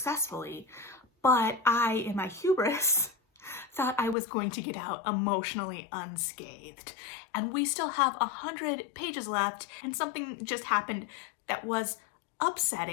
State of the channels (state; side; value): drops out; right; at 4.2 s